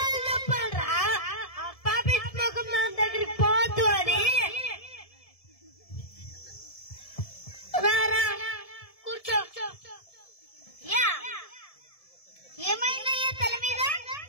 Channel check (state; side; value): late; right; 1.7 ms